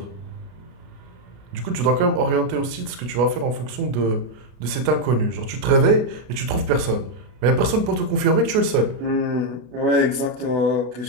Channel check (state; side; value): late; left; 33 ms